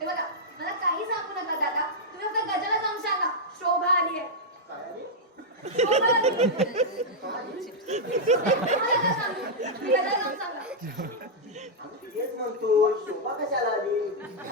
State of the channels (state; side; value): normal; both; correlation -0.06